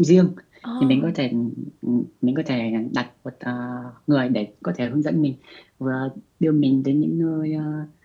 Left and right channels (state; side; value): identical; both; correlation 1.00